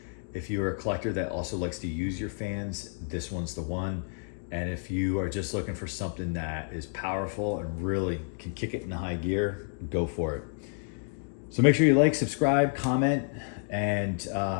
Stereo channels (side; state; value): right; silent; 58 dB below the other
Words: If you're a collector that also likes to use your fans, this one's the one. And if you are just looking for something that is powerful and really can kick it in high gear, go for it. So make sure you like, subscribe, comment, and